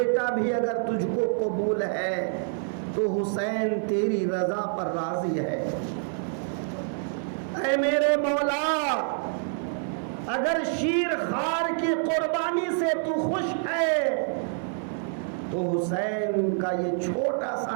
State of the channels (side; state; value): left; silent; 56 dB below the other